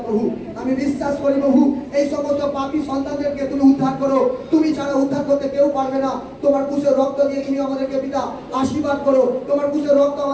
প্রভু। আমি বিশ্বাস করি প্রভু এই সমস্ত পাপী সন্তানদেরকে তুমি উদ্ধার করো। তুমি ছাড়া উদ্ধার করতে কেউ পারবে না। তোমার কুশের রক্ত দিয়ে তুমি আমাদেরকে পিতা আশীর্বাদ করো। তোমার কুশের রক্ত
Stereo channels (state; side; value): identical; both; correlation 1.00